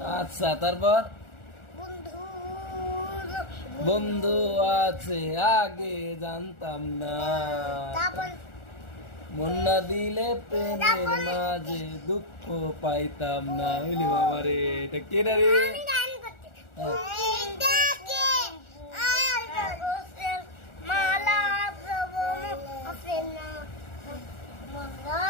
আচ্ছা, তারপর বন্ধু আছে আগে জানতাম না, মন না দিলে প্রেমের মাঝে দুঃখ পাইতাম না। বুঝলি বাবা রে, এটা কে রে?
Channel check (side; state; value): right; late; 1.4 ms